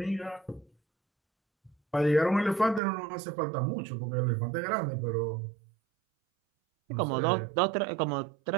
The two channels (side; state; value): left; drops out; at 2.8 s